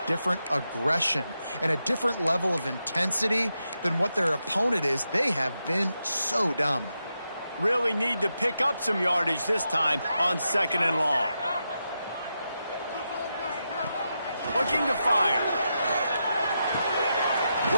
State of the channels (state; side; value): inverted; both; correlation -0.86